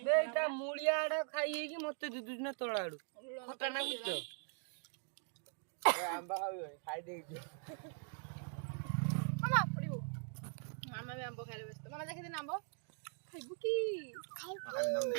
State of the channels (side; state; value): left; silent; 50 dB below the other